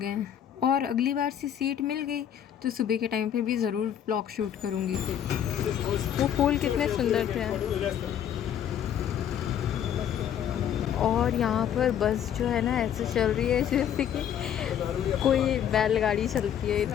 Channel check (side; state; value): right; quieter; 9.6 dB